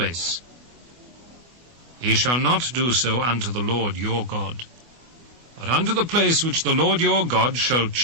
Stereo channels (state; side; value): late; left; 24 ms